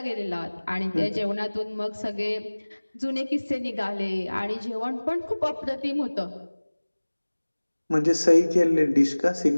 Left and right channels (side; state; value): both; inverted; correlation -1.00